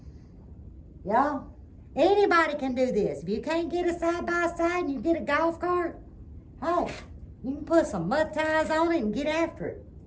y'all, anybody can do this. If you can't get a side-by-side and you get a golf cart, hey, you can put some mud tires on it and get after it.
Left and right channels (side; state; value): both; identical; correlation 1.00